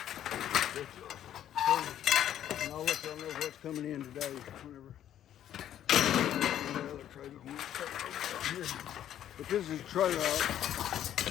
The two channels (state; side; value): quieter; right; 11.0 dB